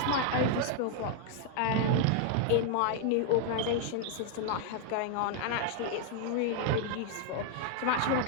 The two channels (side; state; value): both; different; correlation 0.00